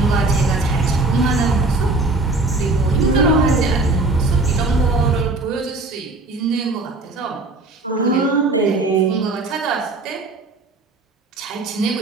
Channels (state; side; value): quieter; left; 3.2 dB